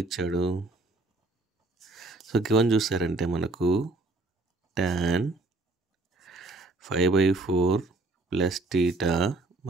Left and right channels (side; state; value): left; quieter; 3.1 dB